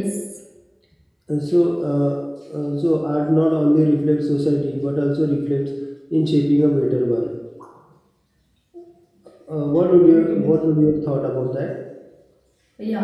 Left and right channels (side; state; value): both; identical; correlation 1.00